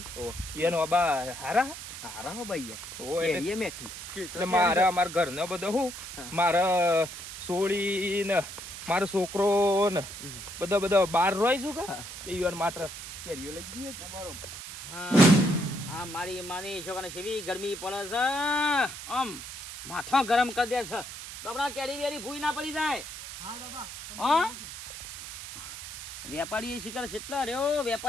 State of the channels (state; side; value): noise; right; hiss, 10 dB below the sound